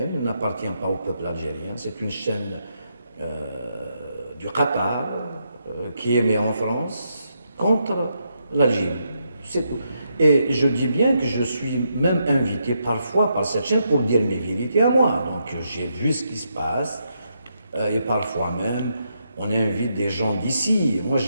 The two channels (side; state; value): both; inverted; correlation -0.80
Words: il n'appartient pas au peuple algérien, c'est une chaîne du Qatar qui émet en France contre l'Algérie. C'est tout. Et je dis bien que je suis même invité parfois par cette chaîne pour dire mes vérités à moi. Donc j'ai vu ce qui se passe et parfois même on invite des gens d'ici. Moi